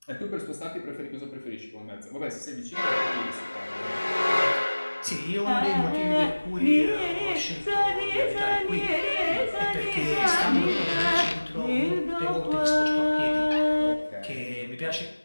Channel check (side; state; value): both; inverted; correlation -1.00